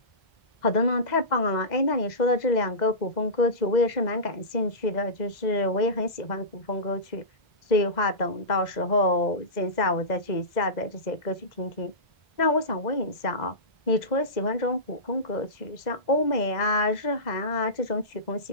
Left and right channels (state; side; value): late; right; 2.0 ms